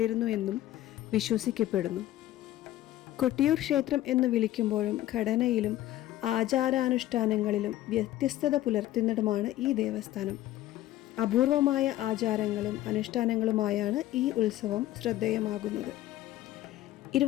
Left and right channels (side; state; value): right; quieter; 14.5 dB